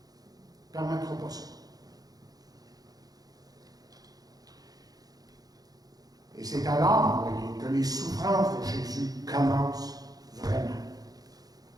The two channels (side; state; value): left; late; 0.18 ms